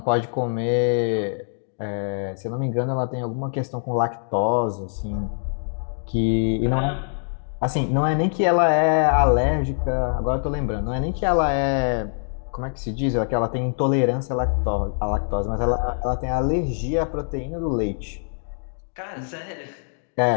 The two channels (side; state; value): right; silent; digital silence